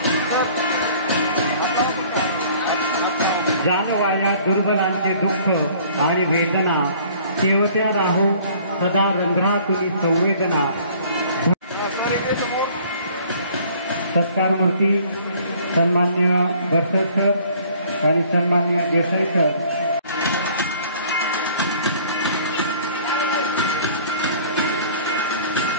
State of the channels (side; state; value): both; inverted; correlation -0.54